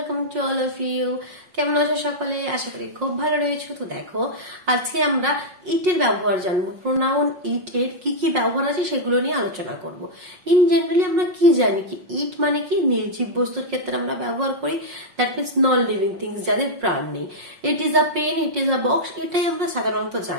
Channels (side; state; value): left; late; 5.5 ms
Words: to all of you. কেমন আছো সকলে? আশা করি খুব ভালো রয়েছো। তো দেখো, আজকে আমরা ইটের ব্যবহার জানবো। প্রোনাউন ইট এর কি কি ব্যবহার আছে সেগুলো নিয়ে আলোচনা করব। ইন জেনারেলি আমরা কি জানি কি ইট মানে কি নির্জীব বস্তুর ক্ষেত্রে আমরা ব্যবহার করি, that means non living things, যাদের প্রাণ নেই। It is a pen, it is a box, এটাই আমরা সাধারণত